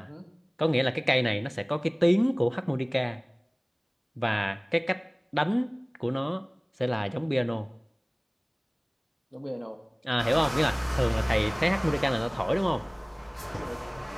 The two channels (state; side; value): identical; both; correlation 1.00